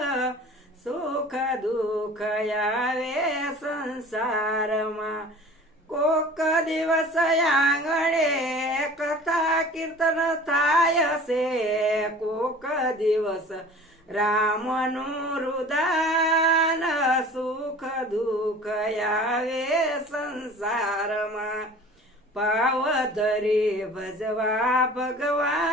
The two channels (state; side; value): normal; both; correlation 0.43